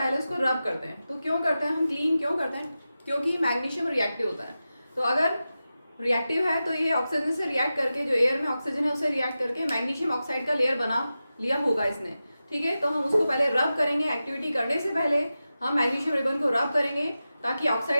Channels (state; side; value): inverted; both; correlation -0.93